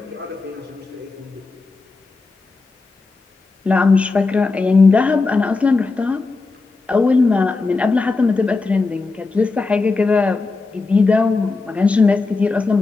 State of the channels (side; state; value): right; quieter; 3.9 dB